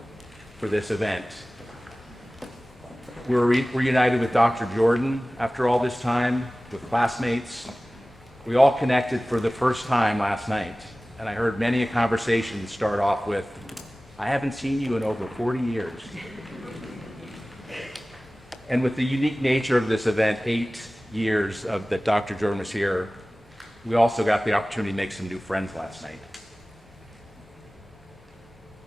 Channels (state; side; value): normal; both; correlation 0.97